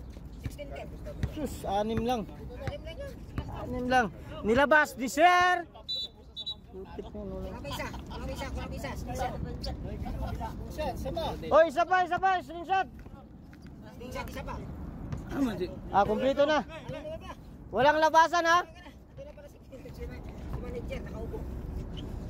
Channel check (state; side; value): identical; both; correlation 1.00